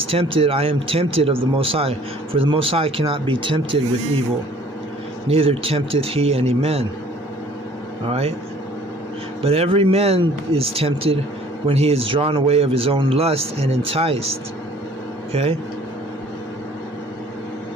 tempted, I am tempted of the Most High, for the Most High cannot be tempted with evil, neither tempteth he any man. Alright? But every man is tempted when he is drawn away of his own lust and enticed. Okay?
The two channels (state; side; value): normal; both; correlation 0.54